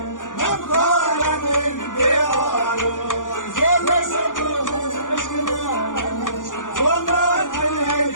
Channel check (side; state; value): right; late; 0.88 ms